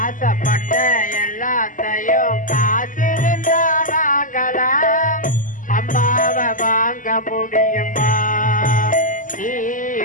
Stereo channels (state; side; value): late; right; 0.38 ms